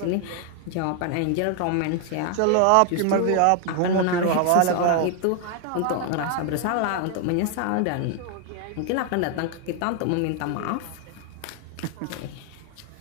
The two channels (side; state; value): both; different; correlation 0.00